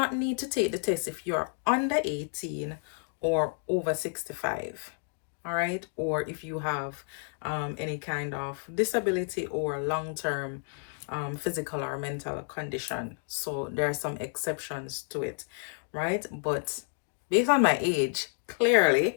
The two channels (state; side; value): silent; right; 58 dB below the other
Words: need to take the test if you're under 18 or over 65. All right, or if you have any kind of disability or long-term physical or mental condition. So there are some exceptions to it, right? But based on my age,